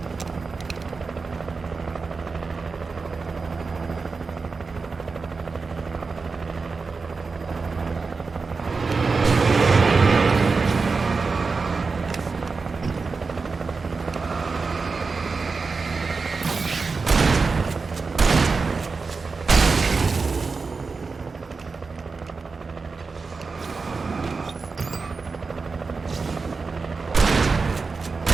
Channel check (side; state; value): left; quieter; 4.4 dB